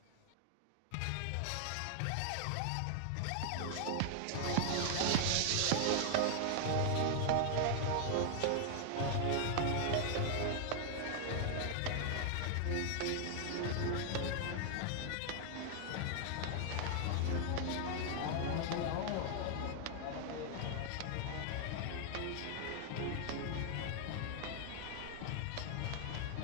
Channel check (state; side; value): different; both; correlation 0.00